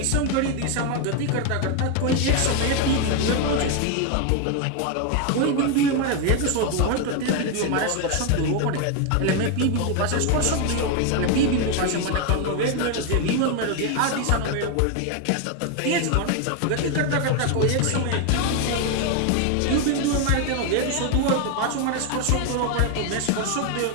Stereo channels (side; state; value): both; different; correlation 0.01